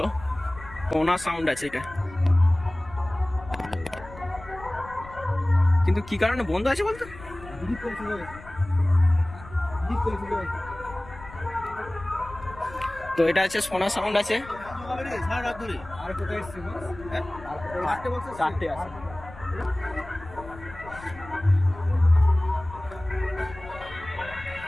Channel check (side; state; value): left; noise; rumble, 17 dB below the sound